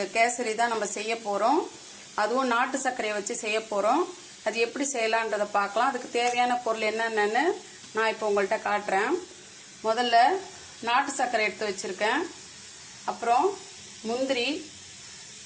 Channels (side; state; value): both; identical; correlation 1.00